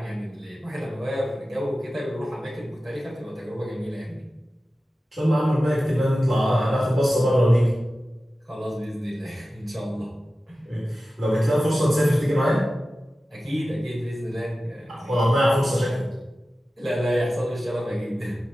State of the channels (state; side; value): normal; both; correlation 0.95